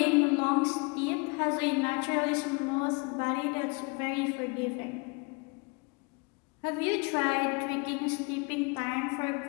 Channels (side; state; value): right; quieter; 30.8 dB